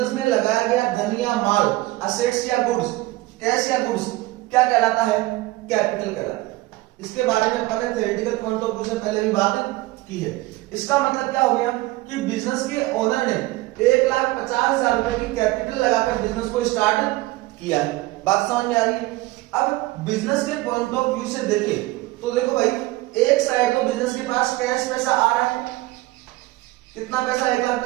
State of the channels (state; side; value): quieter; left; 19.2 dB